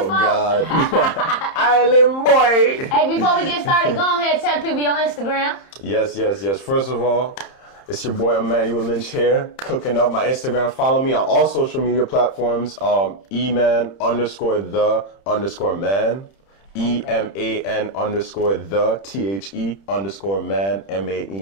God. Island boy. Hey, before we get started, go ahead and tell people your Instagram. Yes. First of all, it's your boy Emmanuel Lynch here, cooking up my Instagram. Follow me on all social media platforms. Eman _the_man. EMAN _the THE_man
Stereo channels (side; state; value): right; late; 31 ms